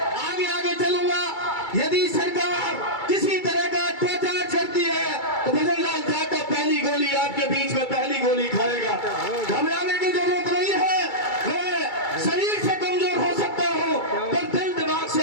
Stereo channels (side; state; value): right; late; 2.3 ms